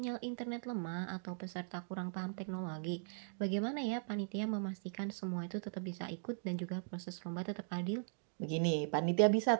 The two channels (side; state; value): left; silent; digital silence